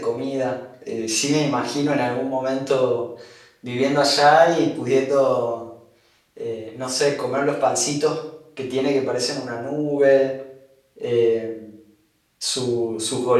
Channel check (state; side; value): identical; both; correlation 1.00